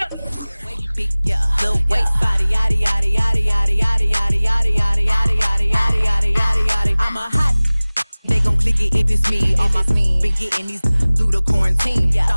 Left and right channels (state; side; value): inverted; both; correlation -0.99